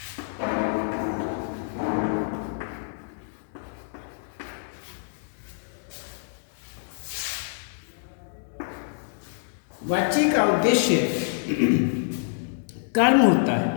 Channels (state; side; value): silent; right; digital silence